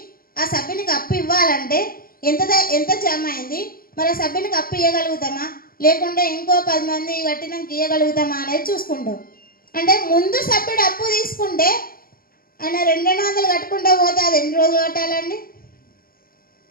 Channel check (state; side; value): late; right; 0.42 ms